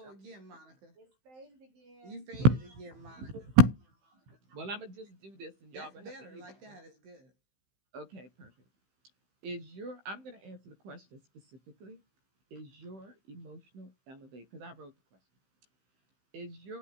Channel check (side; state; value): left; late; 15 ms